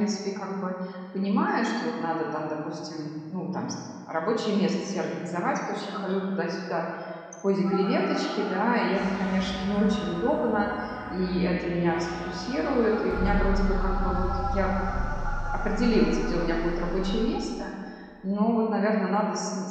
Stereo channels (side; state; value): both; identical; correlation 1.00